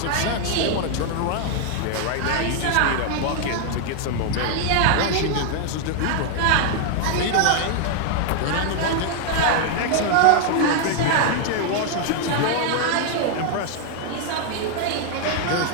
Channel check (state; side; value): different; both; correlation 0.00